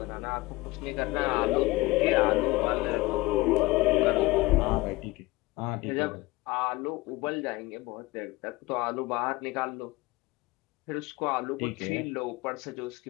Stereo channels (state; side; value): quieter; right; 20.8 dB